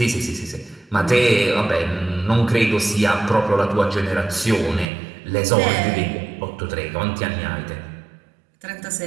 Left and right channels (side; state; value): left; drops out; at 4.9 s